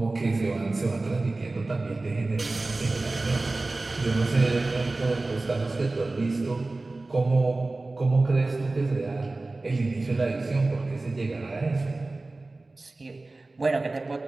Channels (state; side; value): quieter; left; 3.2 dB